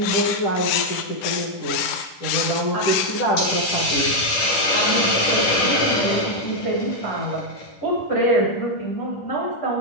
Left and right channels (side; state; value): right; late; 10 ms